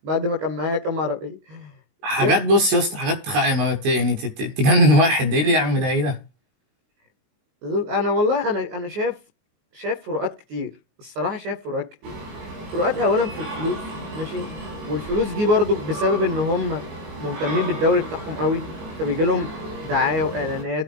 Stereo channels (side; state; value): left; late; 19 ms